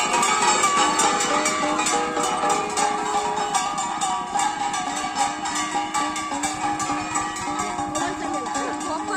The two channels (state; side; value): identical; both; correlation 1.00